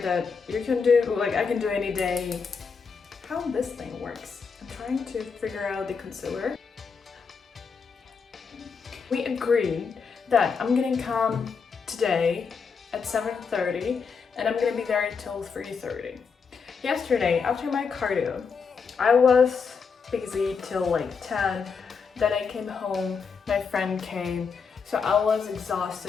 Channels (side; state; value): right; quieter; 5.6 dB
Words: you can do, like I can do any day. How this thing works. I'm trying to figure out the concealer. We agreed that I'm gonna come today at 7:30 and I'm gonna be there until 3:30. Yesterday, after my cardio, I was busy till like 10. Then I came home, my friend came, so I was